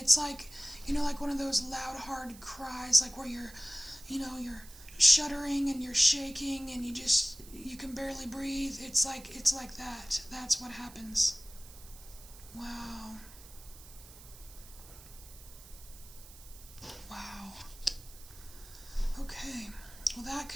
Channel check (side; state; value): right; noise; hiss, 18 dB below the sound